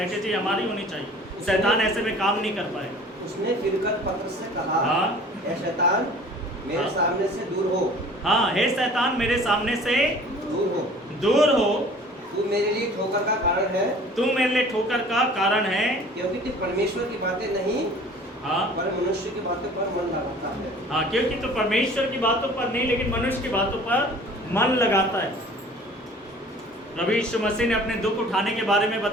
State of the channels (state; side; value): normal; both; correlation 0.47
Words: हमारी होनी चाहिए। शैतान ऐसे में काम नहीं कर पाएगा। उसने फिरकर पतरस से कहा, हाँ। हे शैतान मेरे हाँ। सामने से दूर हो। हाँ, हे शैतान मेरे सामने से दूर हो। दूर हो। तू मेरे लिए ठोकर का कारण है। तू मेरे लिए ठोकर का कारण है, क्योंकि तू परमेश्वर की बातें नहीं, हाँ, पर मनुष्य की बातों पर मन लगाता है। हाँ, क्योंकि तू परमेश्वर की बातों पर नहीं लेकिन मनुष्य की बातों पर मन लगाता है। प्रभु यीशु मसीह ने अपने दुख उठाने के बारे में